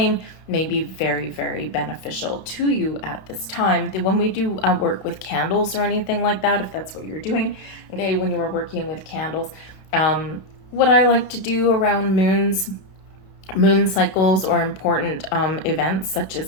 may be very, very beneficial to you at this time. When we do work with candles or anything like that, if that's what you're doing, okay, when you are working with candles, what I like to do around moon cycles or important events such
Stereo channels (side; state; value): right; late; 32 ms